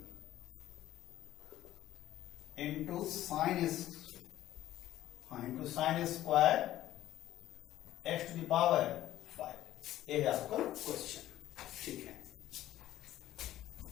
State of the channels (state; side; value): quieter; right; 13.7 dB